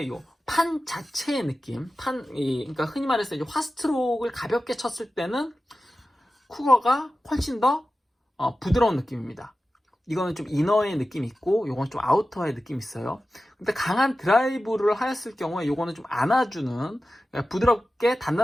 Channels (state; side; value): normal; both; correlation 0.94